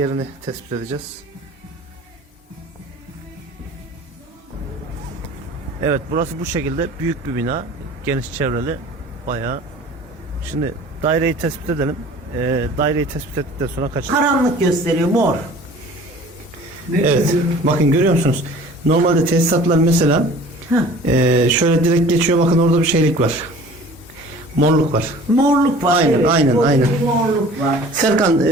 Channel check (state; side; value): normal; both; correlation 0.46